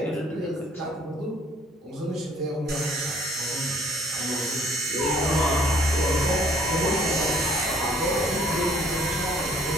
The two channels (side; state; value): both; normal; correlation 0.60